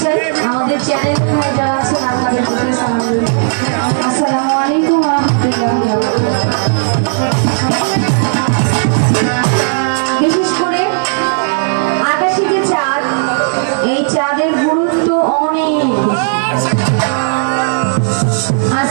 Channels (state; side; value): silent; left; digital silence